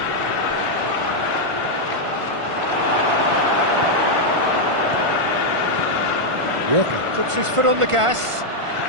Walker puts his foot on the gas.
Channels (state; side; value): late; left; 1.5 ms